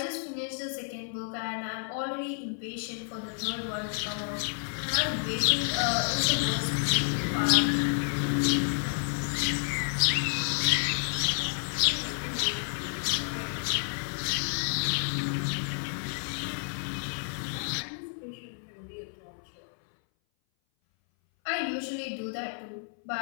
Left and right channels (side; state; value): right; silent; 58 dB below the other